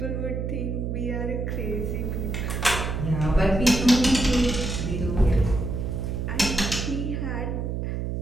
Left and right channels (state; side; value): noise; right; hum, 2 dB below the sound